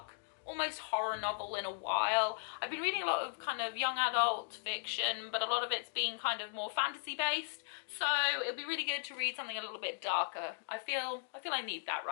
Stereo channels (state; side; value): silent; right; digital silence